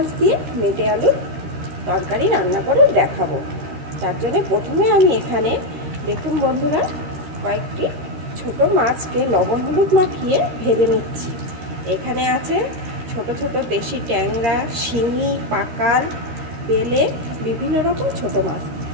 দিয়ে মেটে আলুর তরকারি রান্না করে দেখাবো। তার জন্য প্রথমে আমি এখানে দেখুন বন্ধুরা, কয়েকটি ছোট মাছকে লবণ হলুদ মাখিয়ে ভেজে নিচ্ছি। এখানে আছে ছোট ছোট দেশি ট্যাংরা, শিঙি, পাকাল, বেলে, বিভিন্ন রকম ছোট মাছ।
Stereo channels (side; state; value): left; late; 13 ms